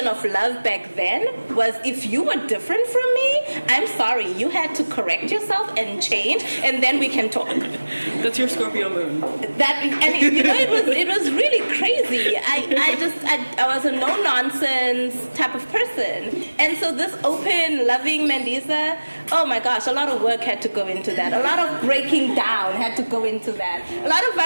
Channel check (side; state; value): both; inverted; correlation -1.00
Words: of love back then was, if you were different from me, I'm sorry, you had to correct yourself and change, and then we can talk. That's your Scorpio moon. It was really crazy. I was a no nonsense type of person, and so this open, loving Mandisa, oh my gosh, a lot of work had to go into that. A lot of breaking down had to go into that. A lot of